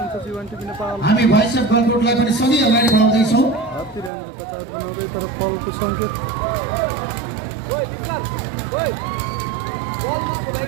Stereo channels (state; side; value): drops out; left; at 4.1 s